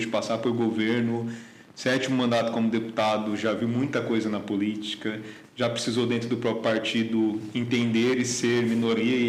de passar por governo 7º mandato como deputado, já viu muita coisa na política, já precisou dentro do próprio partido entender e ser minoria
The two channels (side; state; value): both; identical; correlation 1.00